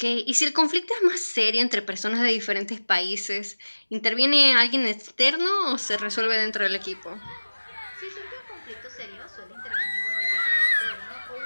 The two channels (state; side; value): inverted; both; correlation -1.00